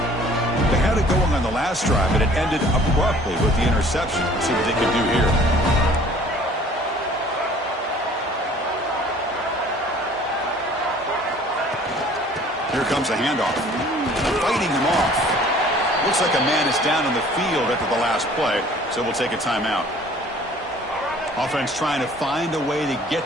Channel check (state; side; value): normal; both; correlation 0.52